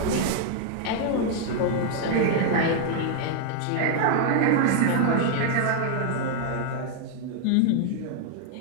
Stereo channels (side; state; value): both; different; correlation -0.01